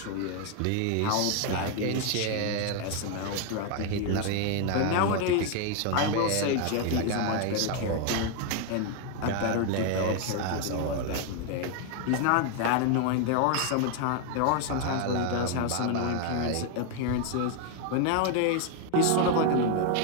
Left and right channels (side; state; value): both; different; correlation 0.01